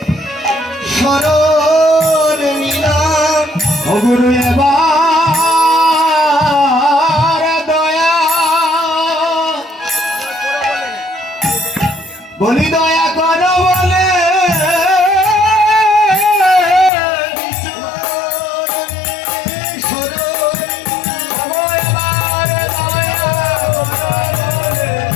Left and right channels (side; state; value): right; drops out; at 16.9 s